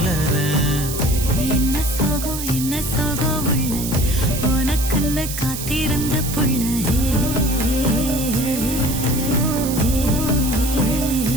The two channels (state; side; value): noise; right; hiss, 7 dB below the sound